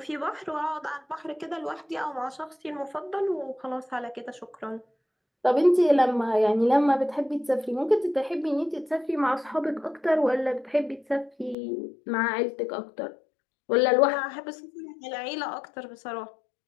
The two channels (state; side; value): drops out; right; at 11.6 s